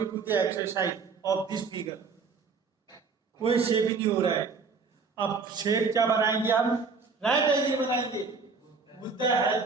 to the exercise of this figure. कोई शेप ही नहीं हो रहा है. अब शेप क्या बनाएंगे हम? राइट एंगल बनाएंगे. With the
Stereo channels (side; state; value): left; quieter; 4.8 dB